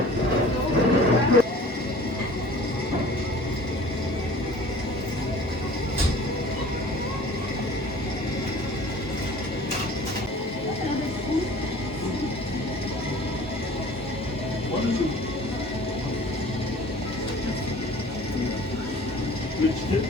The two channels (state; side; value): normal; both; correlation 0.46